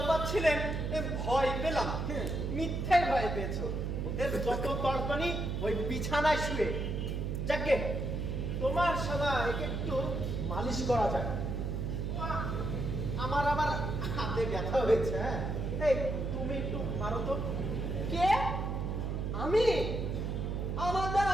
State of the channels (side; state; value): right; noise; hum, 1 dB below the sound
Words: ভয় পেলাম। মিথ্যে ভয় পেয়েছো। ওদের যত তর্পণী ওই বিছানায় শুয়ে। যাকে তোমার শালা একে একটু মালিশ করা যায়। আমার আবার হাতে ব্যথা হয়েছে। হ্যাঁ, এই তুমি একটু মারো তো। কে? আমি? আমার দ্বারা